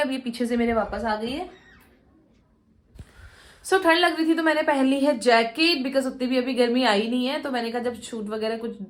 ये पीछे से मेरे वापस आ गई है। ठंड लग रही थी तो मैंने पहन ली है जैकेट, बिकॉज उतनी भी अभी गर्मी आई नहीं है। तो मैंने कहा जब शूट वगैरह कुछ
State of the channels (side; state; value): both; identical; correlation 1.00